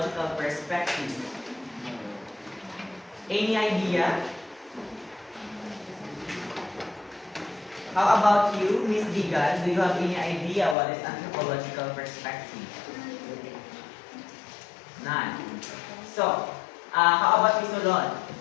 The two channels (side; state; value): right; drops out; at 10.8 s